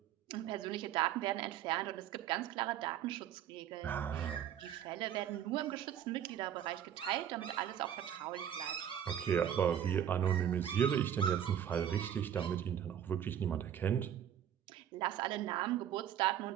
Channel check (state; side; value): quieter; left; 9.9 dB